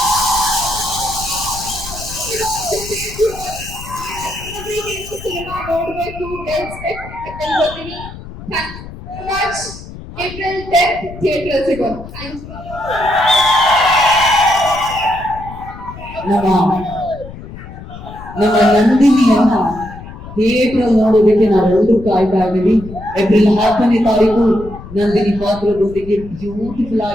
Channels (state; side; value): noise; left; rumble, 14 dB below the sound